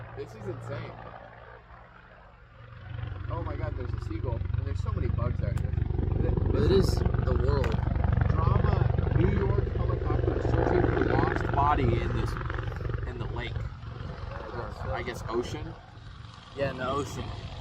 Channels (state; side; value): identical; both; correlation 1.00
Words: this is insane. Oh my god, there's a seagull. And there's so many bugs out here. It is the world. Drama, New York helicopter searching for a lost body in the lake. I guess ocean. Yeah, in the ocean.